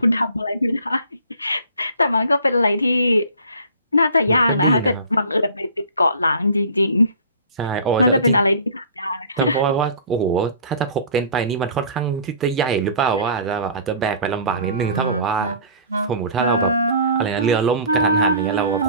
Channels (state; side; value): inverted; both; correlation -0.45